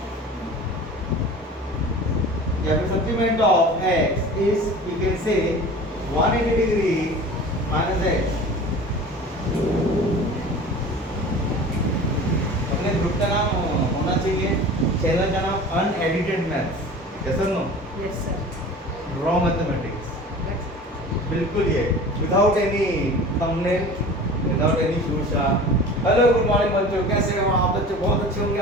या फिर supplement of x is you can say 180 degree minus x. अपने group का नाम होना चाहिए, चैनल का नाम अनएडिटेड मैथ्स. यस और no? Yes, sir. Raw mathematics. बिल्कुल ये without any thumbnail, without any शूशा. हेलो, गुड मॉर्निंग बच्चों, कैसे हो आप? बच्चों बहुत अच्छे होंगे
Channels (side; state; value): both; normal; correlation 0.39